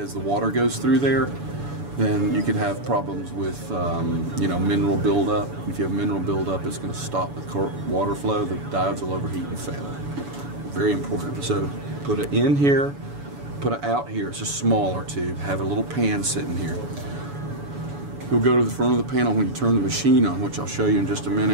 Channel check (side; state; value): left; late; 7.0 ms